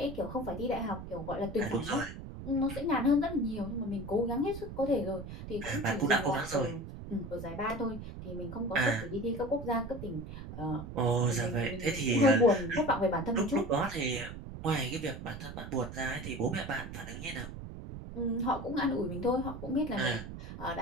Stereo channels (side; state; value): right; noise; rumble, 10 dB below the sound